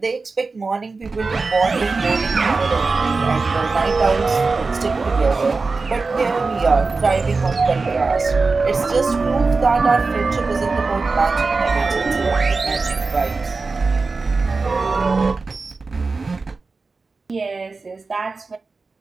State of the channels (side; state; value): left; quieter; 4.1 dB